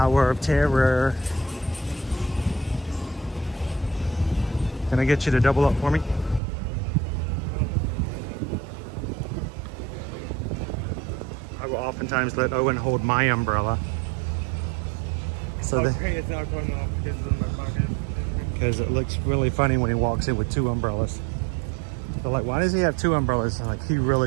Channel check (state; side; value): drops out; left; at 6.4 s